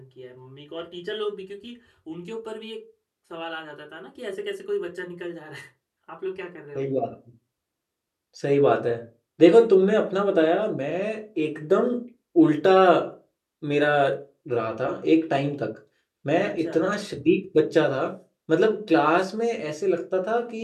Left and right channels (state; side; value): identical; both; correlation 1.00